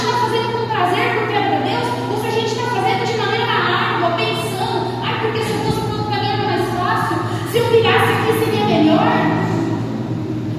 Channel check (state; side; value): identical; both; correlation 1.00